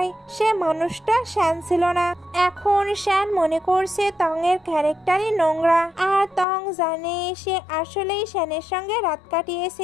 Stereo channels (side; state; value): right; drops out; at 6.5 s